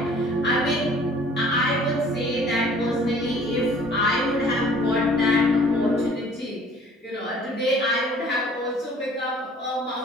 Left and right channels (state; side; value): normal; both; correlation 0.53